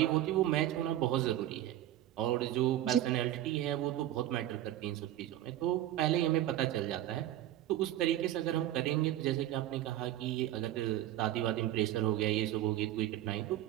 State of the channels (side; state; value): left; quieter; 13.3 dB